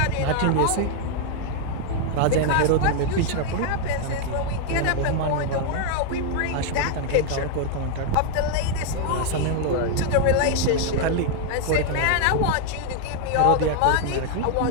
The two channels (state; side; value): different; both; correlation 0.00